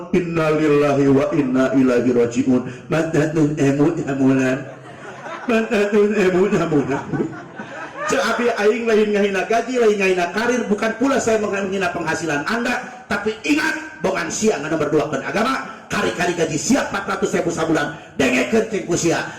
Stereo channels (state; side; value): identical; both; correlation 1.00